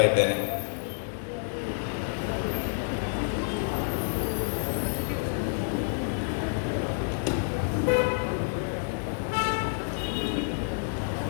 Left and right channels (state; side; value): silent; right; digital silence